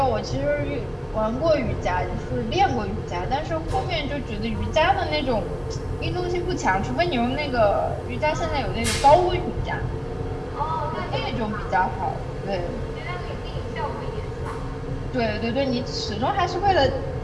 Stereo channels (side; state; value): both; identical; correlation 1.00